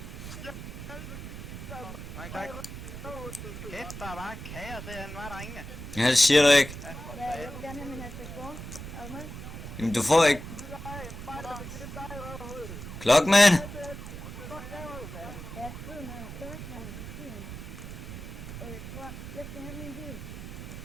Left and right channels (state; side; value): noise; right; rumble, 10 dB below the sound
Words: Mange tak. Kæft, der er bare kager derinde, var der ingen? Ja, det siger du ikke. Ja, jeg vil gerne have min hat på sport. Er du med? Jamen, du får ikke... Klockman! Ja, skriv noget. Kørk, man. Jeg skal have min bil.